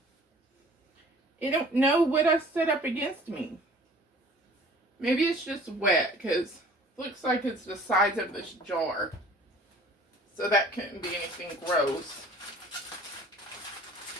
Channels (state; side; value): normal; both; correlation 0.49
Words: I don't know what I set up against me. Maybe it's just wet, because it looks like it's the size of this jar. So that couldn't be anything gross.